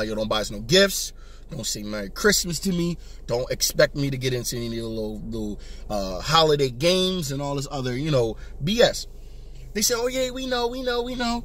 yo, don't buy us no gifts. Don't say Merry Christmas to me. Don't expect me to get into any little holiday games and all this other, BS. They say, oh, yeah, we know.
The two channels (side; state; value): both; identical; correlation 1.00